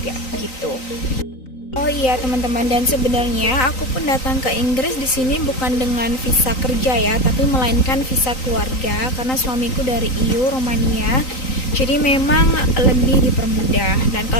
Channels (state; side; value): late; right; 3.9 ms